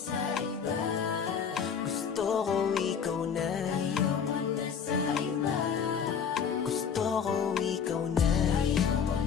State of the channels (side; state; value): right; quieter; 7.0 dB